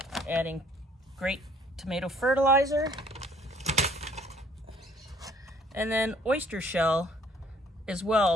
adding great tomato fertilizer, and then oyster shell as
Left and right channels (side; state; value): both; normal; correlation 0.60